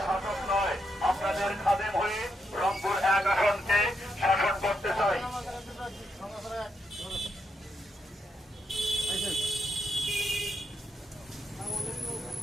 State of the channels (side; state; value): both; normal; correlation 0.81